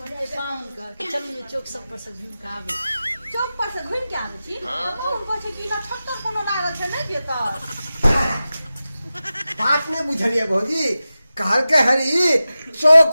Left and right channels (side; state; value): both; inverted; correlation -0.94